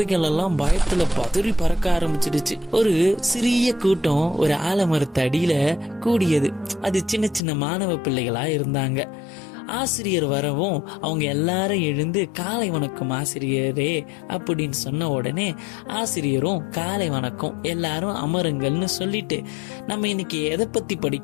எல்லாம் பயத்துல பதறி பறக்க ஆரம்பிச்சிடுச்சு. ஒரு சிறிய கூட்டம் ஒரு ஆலமரத்து அடியில கூடியது. அது சின்ன சின்ன மாணவ பிள்ளைகளா இருந்தாங்க. ஆசிரியர் வரவும் அவங்க எல்லாரும் எழுந்து காலை வணக்கம் ஆசிரியரே அப்படின்னு சொன்ன உடனே ஆசிரியரும் காலை வணக்கம், எல்லாரும் அமருங்கள்னு சொல்லிட்டு, நம்ம இன்னைக்கு எதை பத்தி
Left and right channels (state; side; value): drops out; right; at 7.4 s